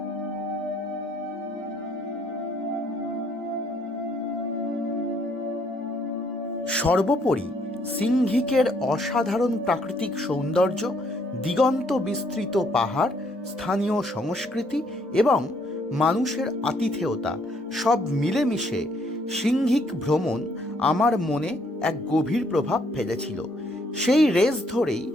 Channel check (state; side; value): normal; both; correlation 0.68